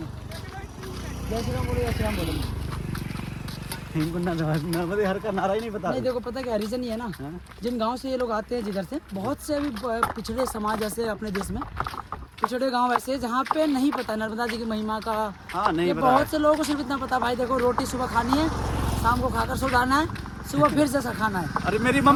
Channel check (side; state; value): both; identical; correlation 1.00